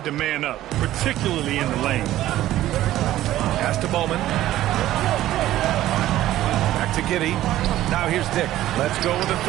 to man up, particularly in the lane. Pass to Bowman. Back to Giddey. Now here's Dick. Let's go with a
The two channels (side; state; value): left; quieter; 14.2 dB